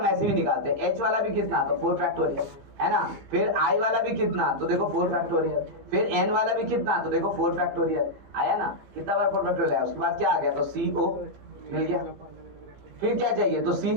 ऐसे भी निकालते हैं। एच वाला भी कितना, तो 4 फैक्टोरियल है ना। फिर आई वाला भी कितना, तो देखो 4 फैक्टोरियल। फिर एन वाला भी कितना, तो देखो 4 फैक्टोरियल आया ना, कितना बार 4 फैक्टोरियल आया। उसके बाद क्या आ गया, तो सी ओ मिल गया। फिर क्या चाहिए, तो सी,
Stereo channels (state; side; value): late; left; 15 ms